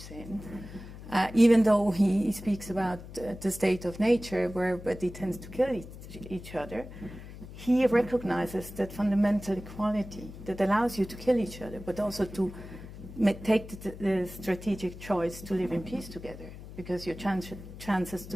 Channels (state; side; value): noise; left; hum, 14 dB below the sound